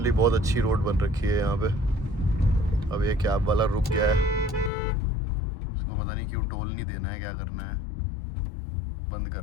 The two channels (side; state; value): right; drops out; at 4.7 s